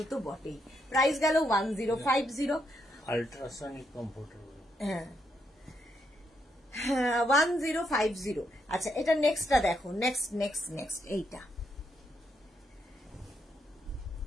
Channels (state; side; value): normal; both; correlation 0.78